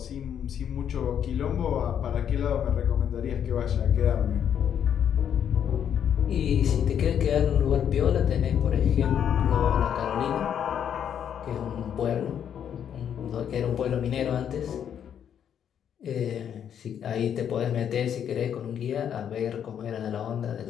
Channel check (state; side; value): quieter; right; 8.9 dB